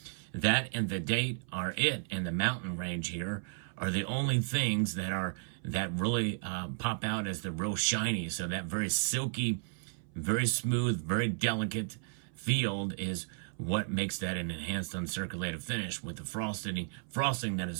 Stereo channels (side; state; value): left; silent; 55 dB below the other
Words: That and the date are it, and the mountain range here are the only things that really pop out as the real shiny. So that very silky, very smooth, very delicate field is what makes that an enhanced uncirculated finish with the frosting that